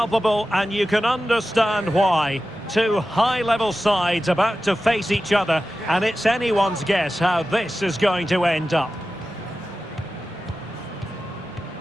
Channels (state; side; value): normal; both; correlation 0.94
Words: and you can understand why. Two high-level sides about to face each other, and it's anyone's guess how this is going to end up.